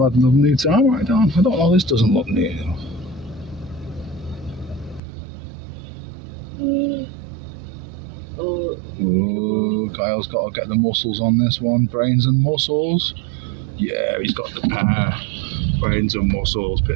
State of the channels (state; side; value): drops out; left; at 5.0 s